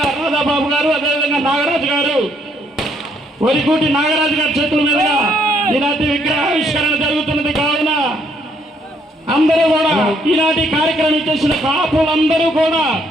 రాధాబాబు గారు, అదేవిధంగా నాగరాజు గారు, వరికూటి నాగరాజు గారి చేతుల మీదుగా ఈనాటి విగ్రహావిష్కరణ జరుగుతున్నది కావున అందరూ కూడా ఈనాటి కార్యక్రమం చేసిన కాపులందరూ కూడా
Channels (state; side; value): normal; both; correlation 0.69